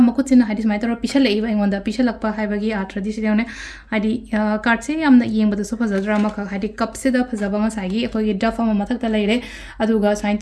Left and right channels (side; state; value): both; identical; correlation 1.00